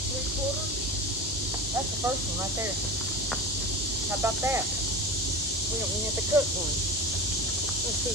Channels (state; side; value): normal; both; correlation 0.29